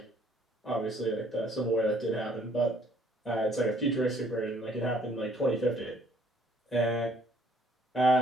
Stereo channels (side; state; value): both; normal; correlation 0.62